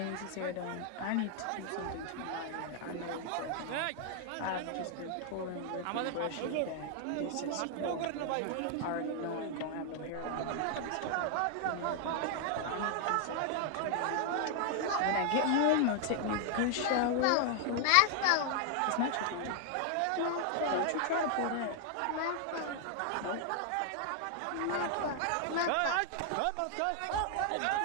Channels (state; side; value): different; both; correlation 0.00